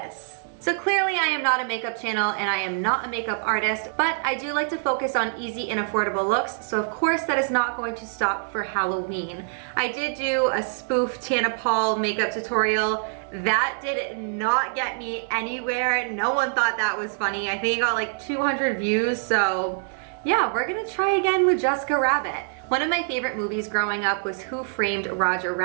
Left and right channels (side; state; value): left; silent; digital silence